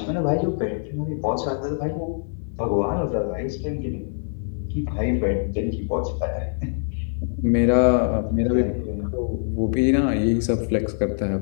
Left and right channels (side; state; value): right; silent; 62 dB below the other